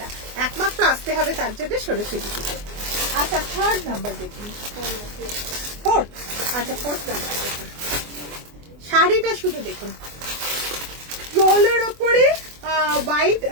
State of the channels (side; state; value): left; late; 24 ms